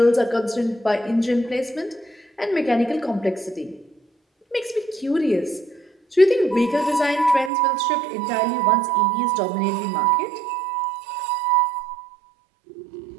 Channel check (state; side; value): drops out; left; at 7.5 s